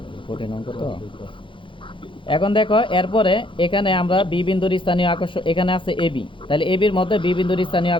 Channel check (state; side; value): late; right; 0.25 ms